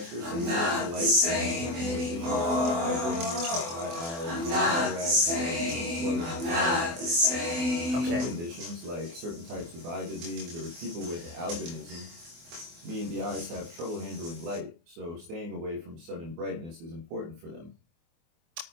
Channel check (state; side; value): late; left; 24 ms